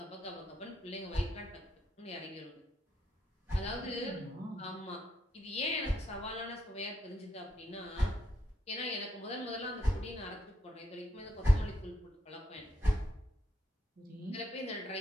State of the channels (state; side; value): normal; both; correlation 0.78